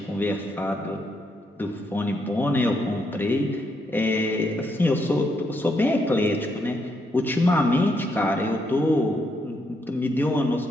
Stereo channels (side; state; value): both; normal; correlation 0.77